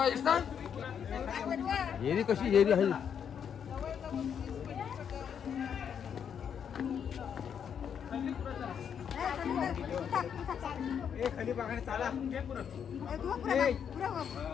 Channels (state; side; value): quieter; right; 7.9 dB